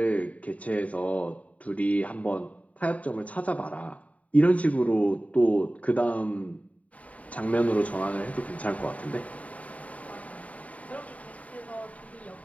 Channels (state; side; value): late; right; 0.069 ms